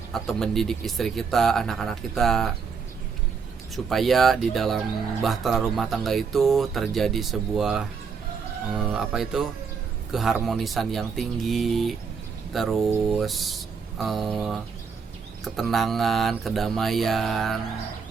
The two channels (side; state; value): left; quieter; 5.7 dB